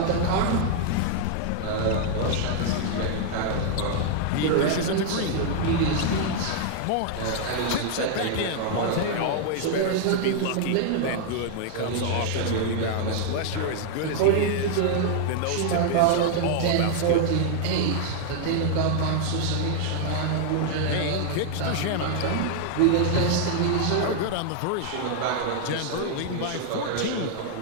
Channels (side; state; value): both; different; correlation -0.01